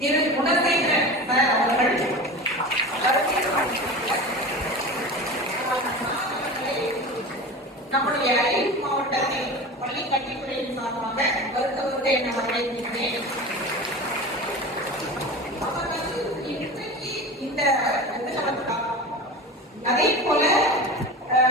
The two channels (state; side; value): normal; both; correlation 0.31